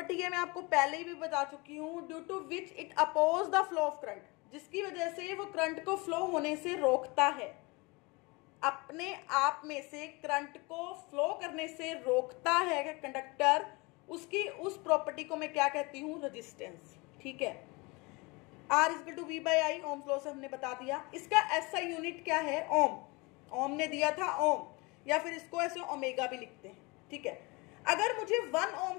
है, मैं आपको पहले ही भी बता चुकी हूँ, due to which it oppose the flow of current, जिसकी वजह से वो करंट को फ्लो होने से रोकता है, अपने आप में से करंट को फ्लो करने से रोकता है कंडक्टर, उसकी उस प्रॉपर्टी को मैं क्या कहती हूँ, रेजिस्टेंस। ठीक है, R equal to V by I, Ohm law से हमने बता दिया। इसका ऐसा यूनिट क्या है, ओम, ओम ने दिया था ओम, या फिर इसको ऐसे ओमेगा भी लिखते हैं। ठीक है, अगर मुझे 1 ओम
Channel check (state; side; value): quieter; right; 26.3 dB